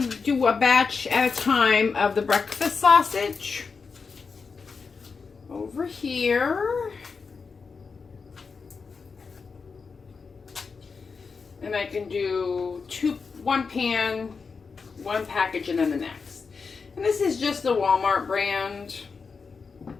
do a batch at a time of the breakfast sausage. Over here. And I can do one pan, one package, and then the next. And this is just the Walmart brand.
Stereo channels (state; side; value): quieter; right; 5.1 dB